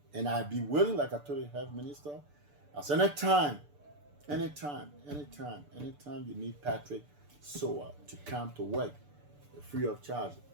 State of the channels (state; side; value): late; left; 6.8 ms